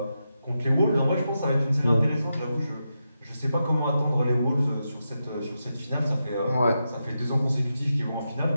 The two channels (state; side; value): inverted; both; correlation -0.87